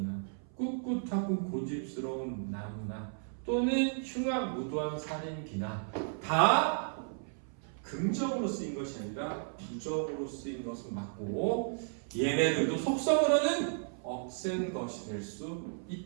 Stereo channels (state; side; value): silent; left; 55 dB below the other